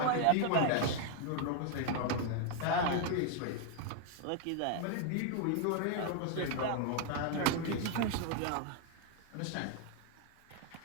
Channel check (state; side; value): different; both; correlation 0.00